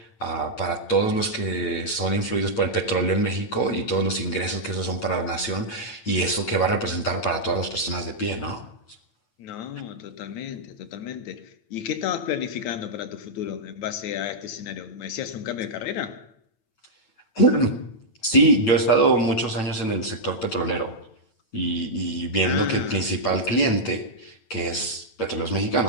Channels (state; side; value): late; right; 9.0 ms